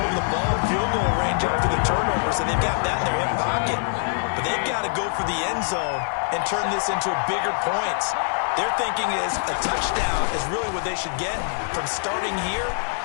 the ball in field goal range after the turnover, so they've got that in their hip pocket. But they've got to go for the end zone and turn this into bigger points. Their thinking is a touchdown is really what they should get from starting here.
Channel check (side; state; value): right; silent; 63 dB below the other